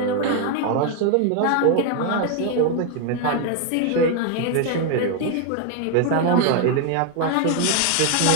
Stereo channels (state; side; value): different; both; correlation 0.01